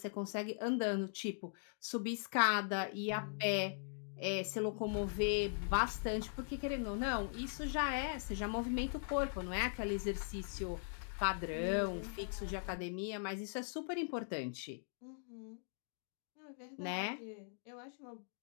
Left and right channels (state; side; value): silent; right; digital silence